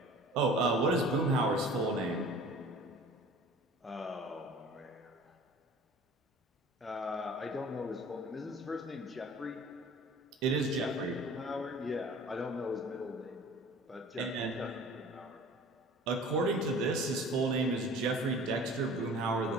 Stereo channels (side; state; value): both; normal; correlation 0.45